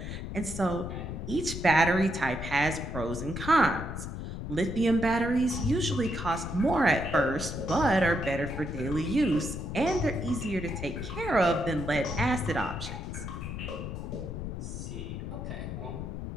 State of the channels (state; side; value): noise; left; rumble, 6 dB below the sound